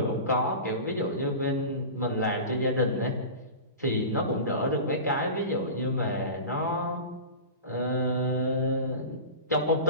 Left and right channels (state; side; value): inverted; both; correlation -0.31